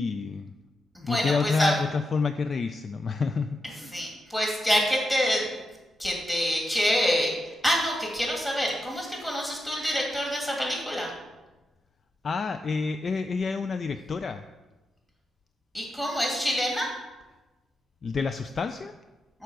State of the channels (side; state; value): both; normal; correlation 0.87